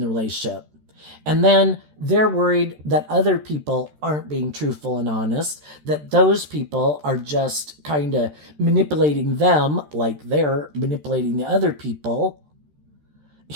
relationship. And then they're worried that other people aren't being truthful and honest, that those people are just kind of manipulating them like they're manipulating the other people,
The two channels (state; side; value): late; left; 13 ms